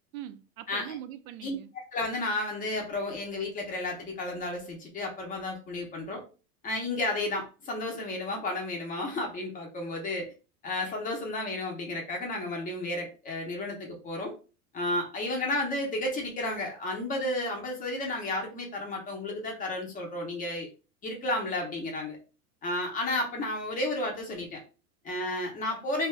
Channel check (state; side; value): normal; both; correlation 0.07